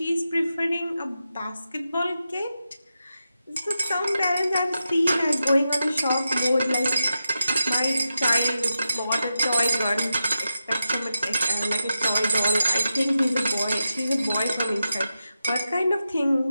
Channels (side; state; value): both; inverted; correlation -0.90